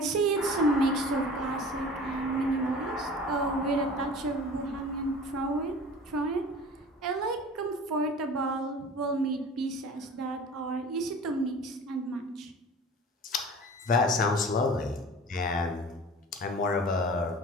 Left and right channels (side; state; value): both; normal; correlation 0.41